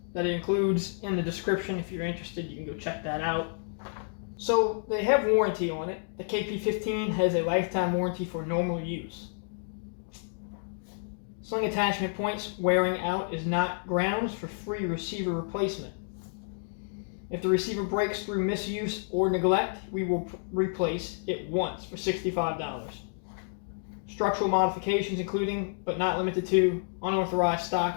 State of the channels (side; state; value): right; silent; digital silence